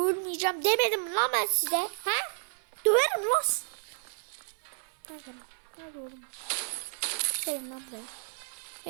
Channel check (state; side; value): silent; left; 57 dB below the other